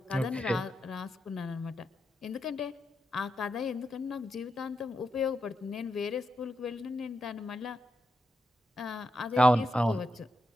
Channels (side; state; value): both; normal; correlation 0.85